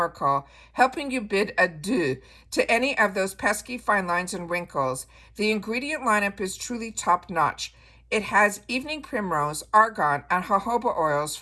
helping you bid adieu to any of those pesky fine lines and wrinkles. The ingredient lineup is truly top notch. It has evening primrose, argan, and jojoba oils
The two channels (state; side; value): identical; both; correlation 1.00